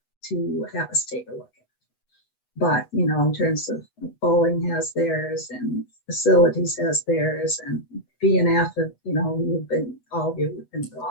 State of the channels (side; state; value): right; late; 8.1 ms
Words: to have us take a look at. But, you know, in terms of bowling has theirs and facilities has theirs, and BNF, you know, all of you have been